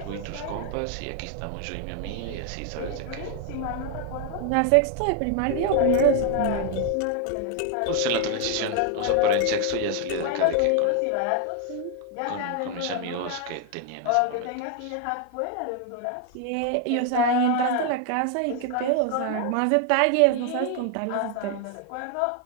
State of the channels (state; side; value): different; both; correlation 0.00